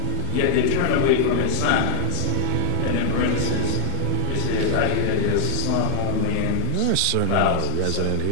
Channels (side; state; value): both; different; correlation -0.01